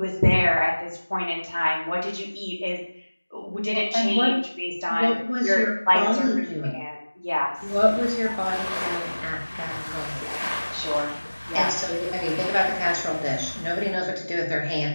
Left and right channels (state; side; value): inverted; both; correlation -1.00